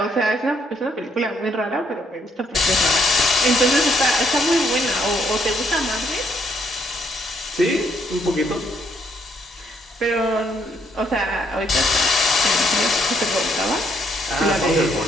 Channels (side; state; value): both; normal; correlation 0.71